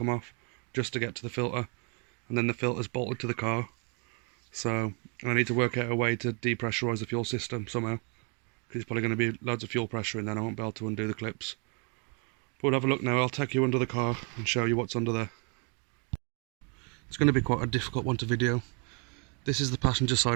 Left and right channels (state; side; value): quieter; left; 36.0 dB